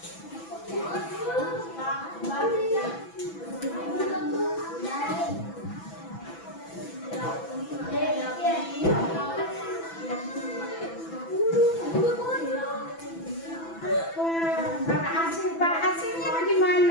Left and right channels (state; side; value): late; right; 6.0 ms